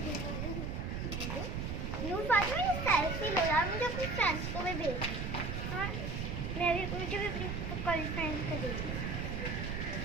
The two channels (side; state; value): right; noise; rumble, 3 dB below the sound